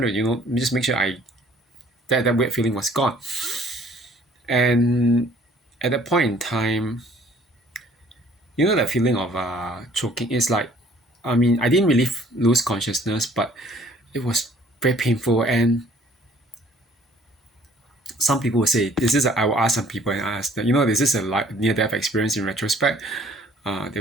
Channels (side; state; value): both; normal; correlation 0.56